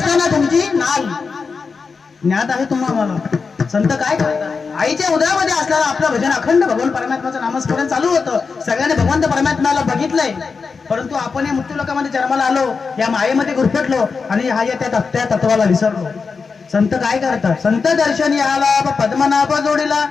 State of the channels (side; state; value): right; quieter; 5.0 dB